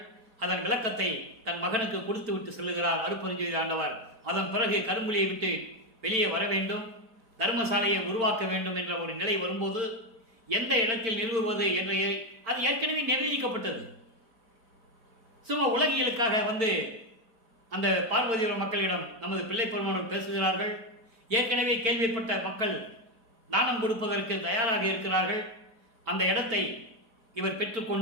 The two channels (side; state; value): left; late; 4.5 ms